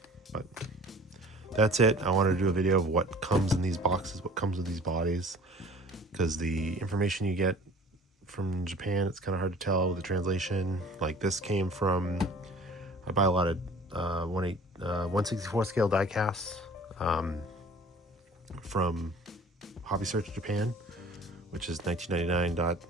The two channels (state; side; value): normal; both; correlation 0.47